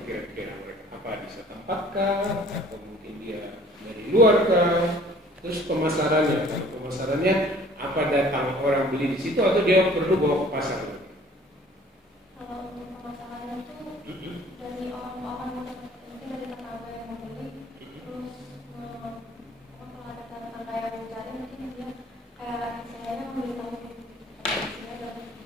kira-kira mereka? Apa bisa tampakkah? Atau mungkin dia dari luar kah? Terus pemasarannya, apa datang orang beli di situ atau dia perlu bawa ke pasar? Kalau untuk pemasaran itu dari orang-orang mungkin dari tetangga yang membeli, terus kalau ada tetangga yang mencari mungkin dia kayak istilahnya memberitahu.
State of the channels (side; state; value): both; normal; correlation 0.53